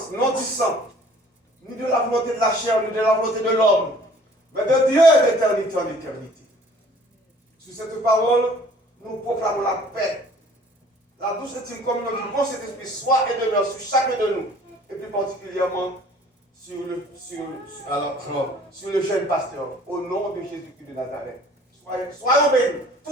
non du sang, ni de la volonté de la chair, ni de la volonté de l'homme, mais de Dieu d'éternité en éternité. Sur cette parole, nous proclamons la paix, la douce intime communion du bon Saint-Esprit soit et demeure sur chacun de nous, et plus particulièrement sur le jeune pasteur, au nom de Jésus-Christ de Nazareth. Soyons bénis,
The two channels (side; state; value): both; normal; correlation 0.53